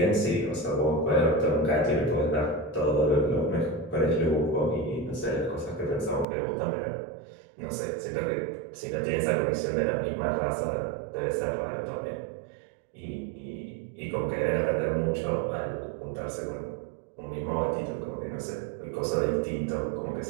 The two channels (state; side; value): drops out; left; at 6.2 s